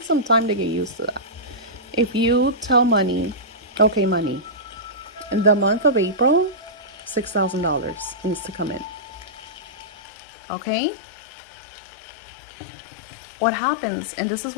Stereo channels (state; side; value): drops out; right; at 9.9 s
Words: some time to get used to that. If you tell money, okay, money, in the month of April, $6,000 needs to come in. Okay? What happens, and this is